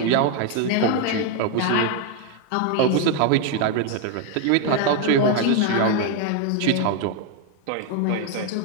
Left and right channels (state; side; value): different; both; correlation 0.01